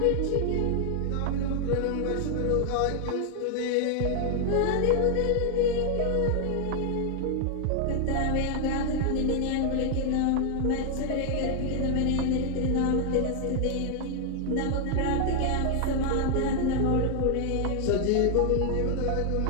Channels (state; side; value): different; both; correlation 0.00